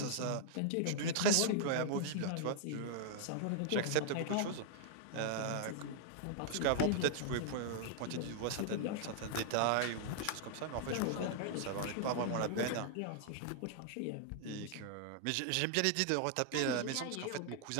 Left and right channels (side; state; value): both; different; correlation -0.01